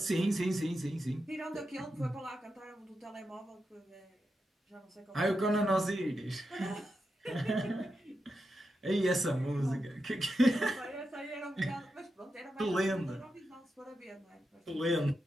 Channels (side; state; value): both; normal; correlation 0.87